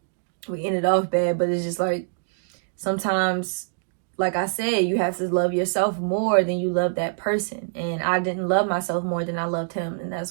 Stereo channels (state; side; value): silent; left; digital silence